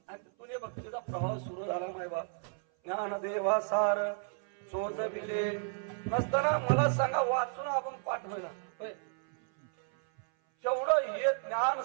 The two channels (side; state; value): left; silent; 56 dB below the other